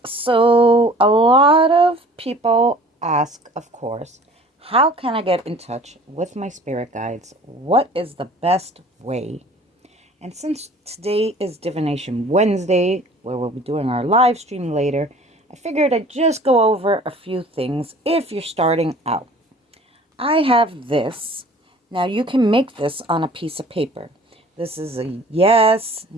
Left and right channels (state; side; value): normal; both; correlation 0.48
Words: so a lot of people ask, of course, how can I get in touch with my spirit guides? What is the best way? And since today is Divination Wednesday, where we'll be doing our live stream later, I figured I'd just go over a few things if you're starting out. I have this. Now you can make this on a piece of paper. This is a yes,